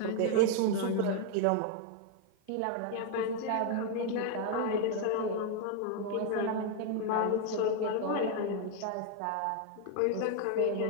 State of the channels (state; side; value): different; both; correlation 0.01